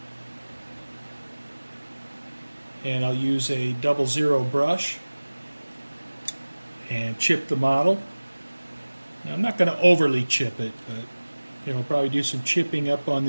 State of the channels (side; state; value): both; inverted; correlation -1.00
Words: and I'll use a 00 brush and chip the model. Now, I'm not going to overly chip it, but probably do some chipping up on